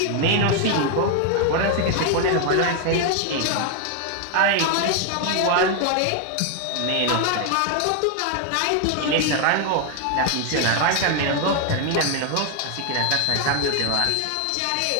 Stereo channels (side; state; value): both; different; correlation 0.00